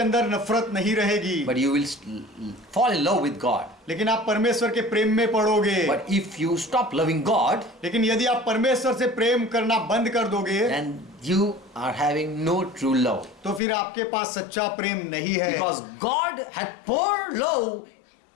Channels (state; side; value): drops out; right; at 13.6 s